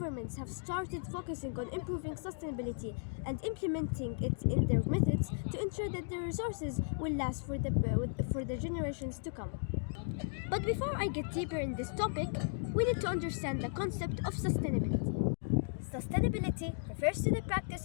have started focusing on improving sustainability and implementing it in their methods to ensure that the resources will last for the generations to come. But before I get deeper in this topic, we need to understand the concept of sustainability. Sustainability refers to the practice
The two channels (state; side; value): silent; right; digital silence